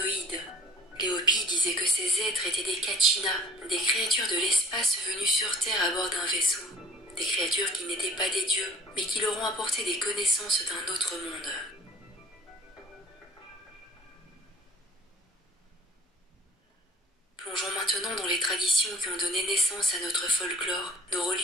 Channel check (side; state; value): both; normal; correlation 0.52